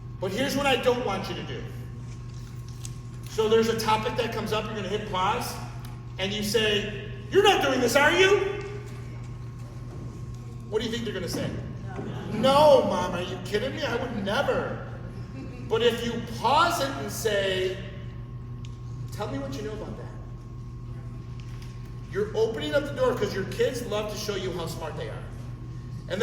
But here's what I don't want you to do. So there's a topic that comes up, you're gonna hit pause, and you say, "You're not doing this, are you?" What do you think they're gonna say? No, Mom, are you kidding me? I would never. But if you pause it and say, "Tell me what you know about that," you're opening up the door, because your kids love to show you how smart they are. And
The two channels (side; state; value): both; identical; correlation 1.00